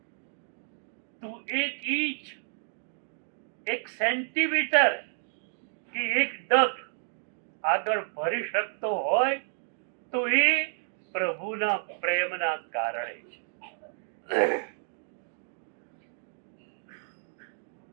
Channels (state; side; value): silent; left; digital silence